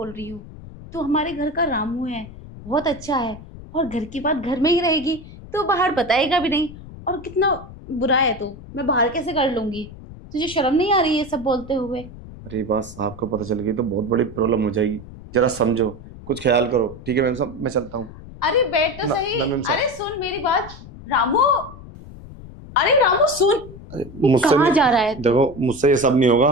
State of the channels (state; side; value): noise; left; rumble, 16 dB below the sound